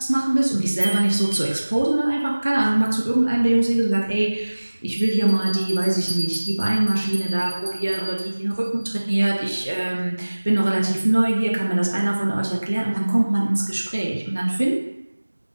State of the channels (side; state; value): both; inverted; correlation -1.00